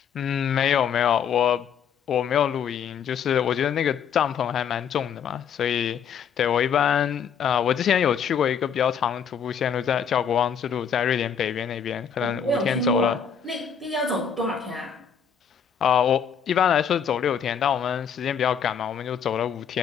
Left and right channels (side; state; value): right; quieter; 7.5 dB